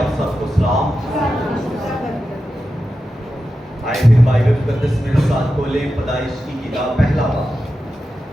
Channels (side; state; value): both; normal; correlation 0.91